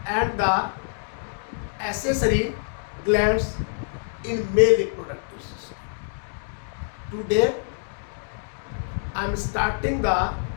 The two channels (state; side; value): silent; right; digital silence